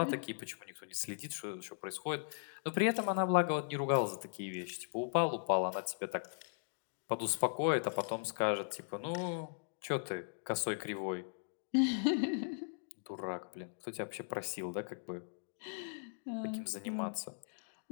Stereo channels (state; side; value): silent; right; digital silence